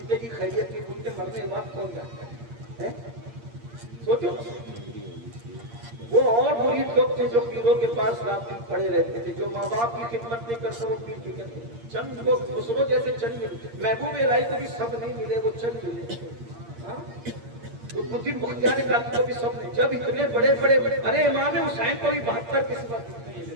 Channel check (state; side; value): late; left; 8.6 ms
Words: کی خیریت کی پوچھتے، مرنے کے بعد کون جاتا ہے؟ سوچو، وہ اور مرید لوگ تھے جو پیروں کے پاس رات دن پڑے رہتے تھے، جو ماں باپ کی خدمت نہیں کرتے وہ پیر کی کرتے، چند لوگ خسرو جیسے چند ملے، محبوب الہی کو بھی سب نہیں ملے، وہ چند ملے، قطب الدین بختیار کاکی کو بھی سب نہیں، جب اتنے بڑے بڑے، ارے امام حسین کو بھی 72 قسمت ملے،